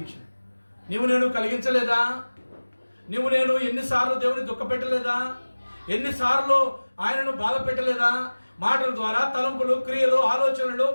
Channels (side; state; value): both; inverted; correlation -1.00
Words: నేను కలిగించలేదా? నేను ఎన్నిసార్లు దేవుని దుఃఖపెట్టలేదా? ఎన్నిసార్లు ఆయనను బాధ పెట్టలేదా? మాటల ద్వారా, తలంపులు, క్రియలు, ఆలోచనలు,